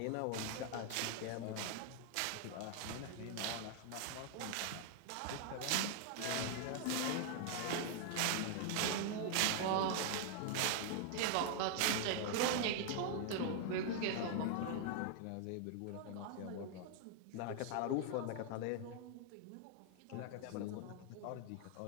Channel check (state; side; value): different; both; correlation 0.00